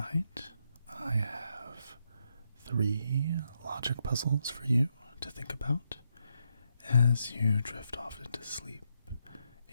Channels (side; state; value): both; inverted; correlation -0.80